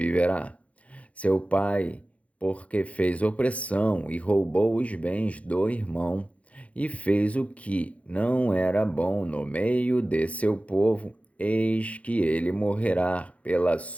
Seu pai porque fez opressão e roubou os bens do irmão, e fez o que não era bom no meio de seu povo, eis que ele morrerá pela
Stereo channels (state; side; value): late; right; 0.065 ms